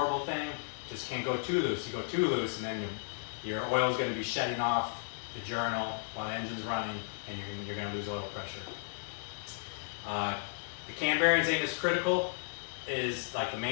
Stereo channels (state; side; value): silent; right; digital silence